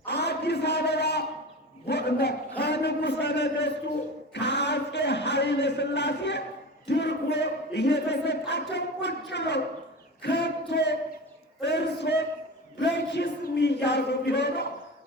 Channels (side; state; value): both; normal; correlation 0.29